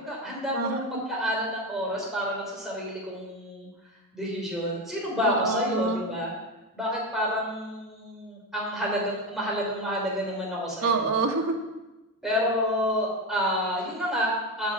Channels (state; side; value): normal; both; correlation 0.15